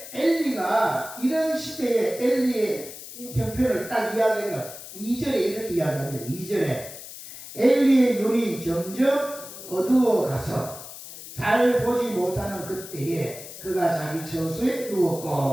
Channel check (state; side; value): noise; left; hiss, 13 dB below the sound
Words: 엘리가 이런 시대에 엘리의 형편을 딱 이야기하면 2절에 이렇게 이야기합니다. 2절에 엘리의 눈이 점점 어두워가서 잘 보지 못하는 그때에 그가 자기 처소에